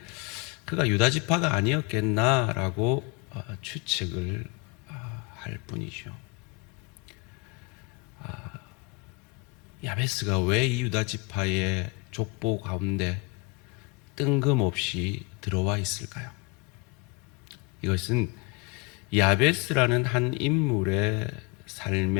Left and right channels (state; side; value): quieter; right; 24.9 dB